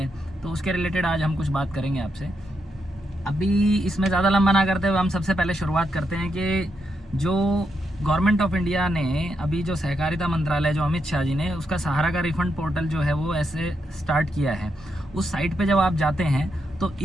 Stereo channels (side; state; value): both; normal; correlation 0.82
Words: तो उसके रिलेटेड आज हम कुछ बात करेंगे आपसे। अभी इसमें ज़्यादा लंबा ना करते हुए हम सबसे पहले शुरुआत करते हैं कि जो गवर्नमेंट ऑफ इंडिया ने अभी जो सहकारिता मंत्रालय जो अमित शाह जी ने उसका सहारा का रिफंड पोर्टल जो है वो ऐसे स्टार्ट किया है। उस साइट पे जब आप जाते हैं तो